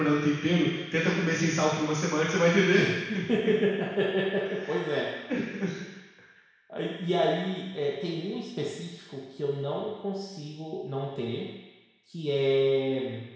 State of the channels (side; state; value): both; identical; correlation 1.00